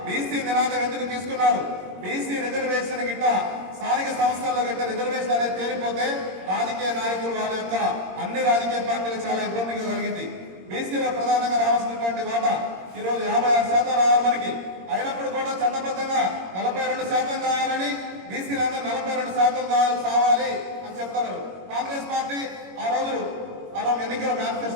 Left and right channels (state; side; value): late; left; 22 ms